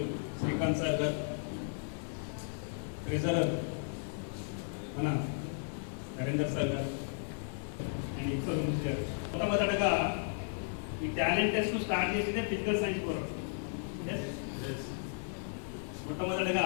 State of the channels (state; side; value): silent; right; digital silence